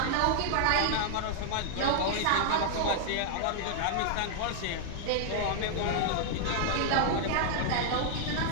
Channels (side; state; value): both; different; correlation 0.00